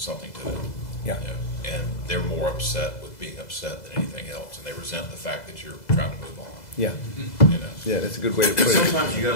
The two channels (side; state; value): right; late; 2.0 ms